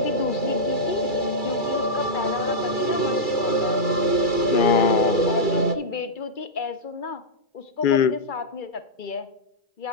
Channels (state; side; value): late; right; 2.3 ms